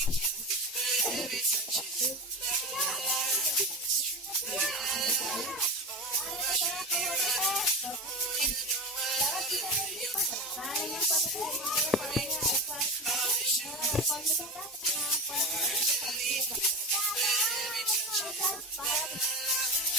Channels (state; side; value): normal; both; correlation 0.23